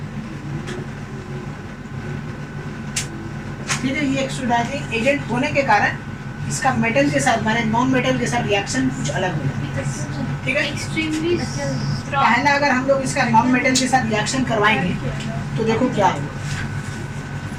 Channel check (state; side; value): identical; both; correlation 1.00